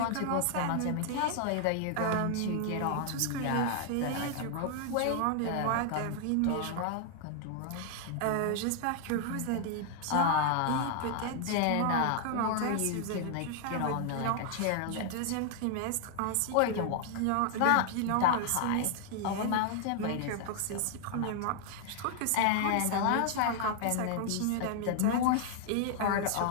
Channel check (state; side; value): different; both; correlation 0.00